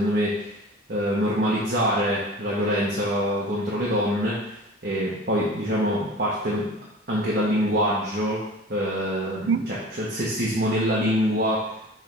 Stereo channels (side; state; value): both; normal; correlation 0.40